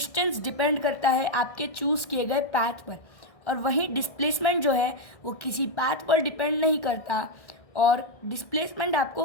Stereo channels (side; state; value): right; late; 1.6 ms